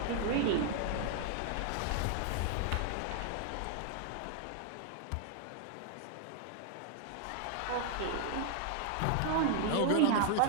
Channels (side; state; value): both; different; correlation 0.00